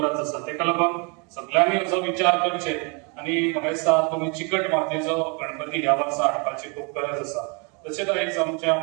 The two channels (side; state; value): left; quieter; 33.0 dB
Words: आसा. ताका लागून सगळ्यांनी असो विचार करचे आनी म्हाका दिसता तुमी चिकट मातयेचो गणपती ह्या वर्सा हाडपाची खूब गरज आसा. तशेंच आयज आमच्या